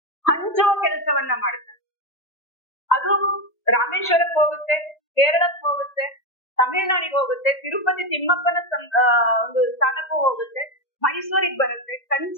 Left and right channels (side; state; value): right; late; 1.8 ms